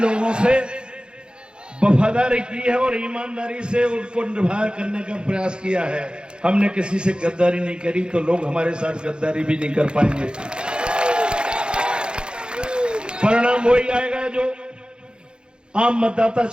से वफादारी की है और ईमानदारी से उनको निभा करने का प्रयास किया है। हमने किसी से गद्दारी नहीं करी, तो लोग हमारे साथ गद्दारी भी नहीं कर पाएंगे। परिणाम वही आएगा जो आम मतदाता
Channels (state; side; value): late; left; 0.051 ms